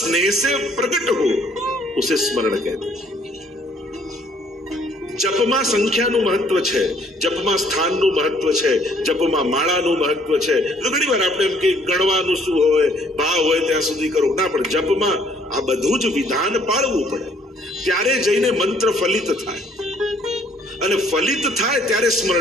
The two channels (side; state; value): both; normal; correlation 0.62